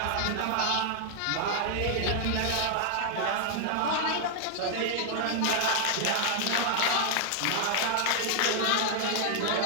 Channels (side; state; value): both; different; correlation 0.00